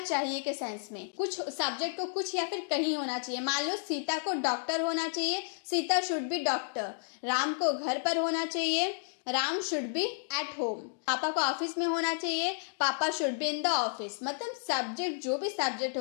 के सेंस में। कुछ सब्जेक्ट को कुछ या फिर कहीं होना चाहिए। मान लो सीता को डॉक्टर होना चाहिए, Sita should be doctor. Ram को घर पर होना चाहिए, Ram should be at home. पापा को ऑफिस में होना चाहिए, पापा should be in the office. मतलब सब्जेक्ट, जो भी सब्जेक्ट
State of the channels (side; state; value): right; silent; digital silence